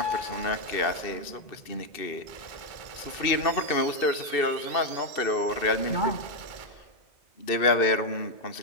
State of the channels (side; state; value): right; late; 2.6 ms